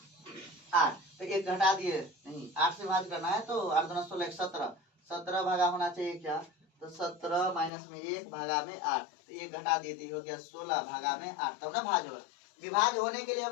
8। तो 1 घटा दिए, नहीं 8 से भाग करना है तो 8 × 2 = 16 17 17 भागा होना चाहिए क्या? तो 17 - में 1 भागा में 8। तो 1 घटा दिए तो हो गया 16 भागा में 8। तब ना भाज होगा। विभाज्य होने के लिए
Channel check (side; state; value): right; drops out; at 7.7 s